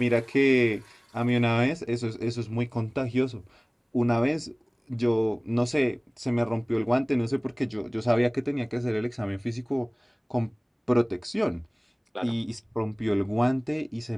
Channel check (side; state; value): both; identical; correlation 1.00